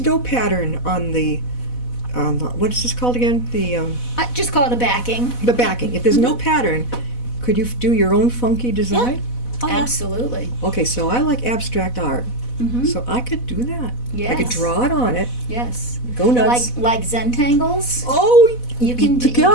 pattern on the what is this called again? I just call it a backing. The backing. If there's no pattern, could you do your own funky design? oh, yeah. Absolutely. Okay, so I like abstract art, Mm-hmm. so I could do that. I could Yes. draw it on it. Yes. Go nuts. Like Zentangles. Oh, You can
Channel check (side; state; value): right; late; 4.1 ms